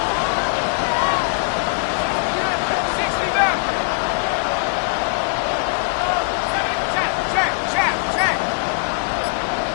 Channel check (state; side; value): silent; right; 57 dB below the other